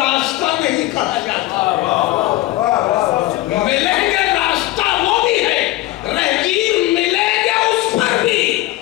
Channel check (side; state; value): right; quieter; 17.2 dB